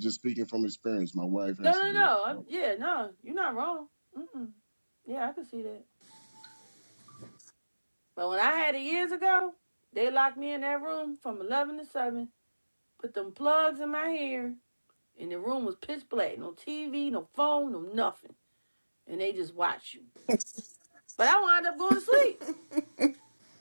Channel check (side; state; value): both; inverted; correlation -1.00